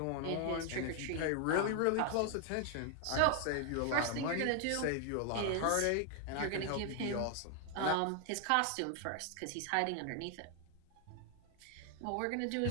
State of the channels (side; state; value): both; different; correlation 0.00